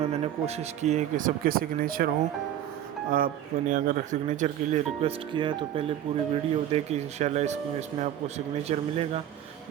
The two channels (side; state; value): left; quieter; 11.1 dB